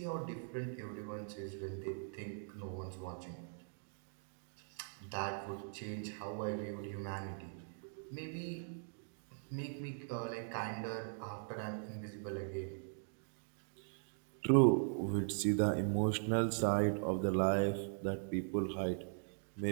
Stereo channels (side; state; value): left; silent; digital silence